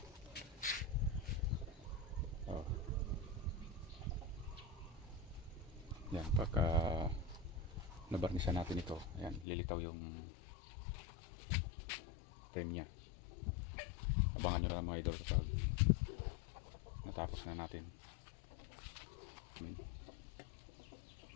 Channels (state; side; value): drops out; right; at 9.5 s